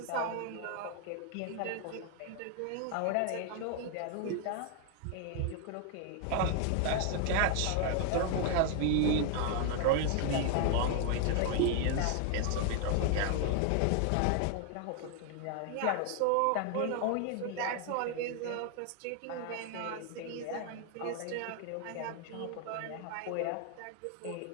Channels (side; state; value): both; different; correlation 0.00